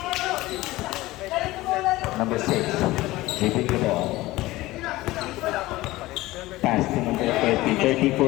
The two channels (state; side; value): quieter; right; 18.4 dB